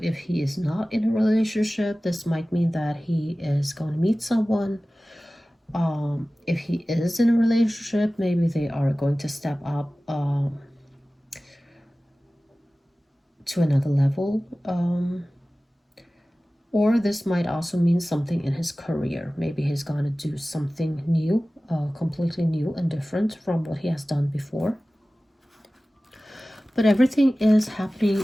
if he is not in a relationship, this might mean that he is going to meet someone. If he is in a relationship, maybe they are going to step up to another level. Or this might also mean something in his career. Maybe he's going to do something new, completely new and different from what he has done before. But everything is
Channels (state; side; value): normal; both; correlation 0.97